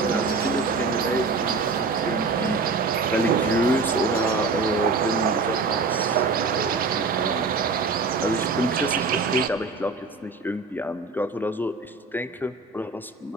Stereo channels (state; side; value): quieter; left; 4.0 dB